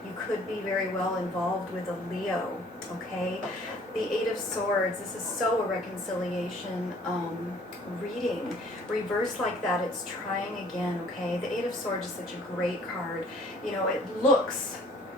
You could be very well involved with a Leo, okay? The 8 of Swords, this is so a reconciliation reading. Reversed like that, it's trying again, okay? The 8 of Swords is such a great card. It looks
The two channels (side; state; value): both; normal; correlation 0.56